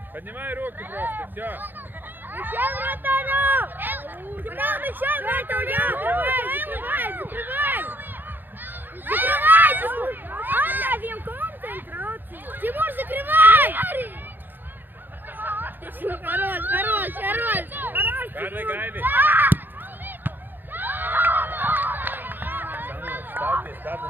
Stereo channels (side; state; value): left; late; 0.092 ms